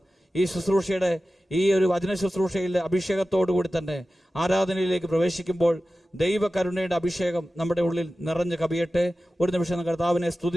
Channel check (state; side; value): normal; both; correlation 0.95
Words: ഈ ശുശ്രൂഷയുടെ, ഈ ഒരു വചന ശുശ്രൂഷയിലെ അഭിഷേകത്തോടു കൂടി തന്നെ ആരാധനയിലേക്ക് പ്രവേശിക്കുമ്പോൾ ദൈവകരുണയുടെ അഭിഷേകം നമ്മുടെ ഉള്ളിൽ നിറഞ്ഞു കവിയട്ടെ. ഒരു നിമിഷം കർത്താവിനെ